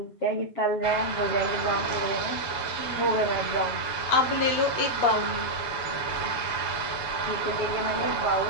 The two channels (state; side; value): late; right; 7.0 ms